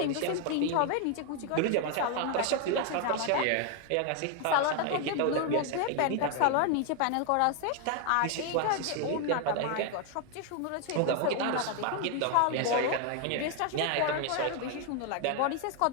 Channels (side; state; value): both; different; correlation 0.00